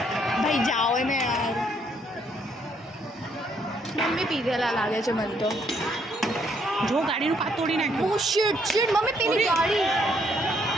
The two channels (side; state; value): both; normal; correlation 0.70